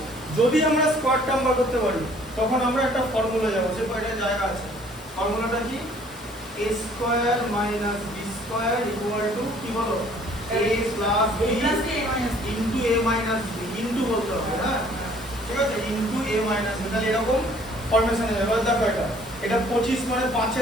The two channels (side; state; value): both; normal; correlation 0.57